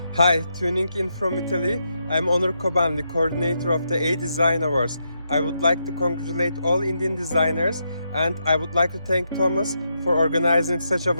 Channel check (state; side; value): inverted; both; correlation -0.82